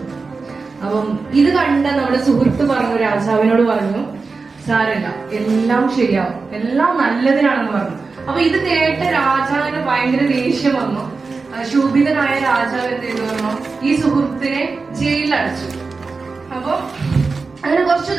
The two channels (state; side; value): quieter; left; 4.3 dB